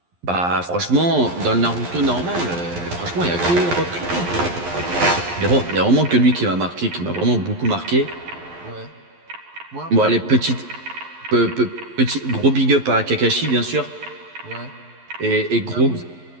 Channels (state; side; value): late; left; 11 ms